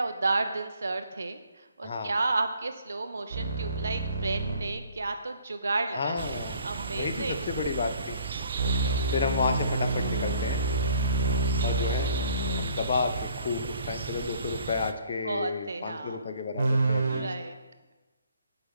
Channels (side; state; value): both; inverted; correlation -0.60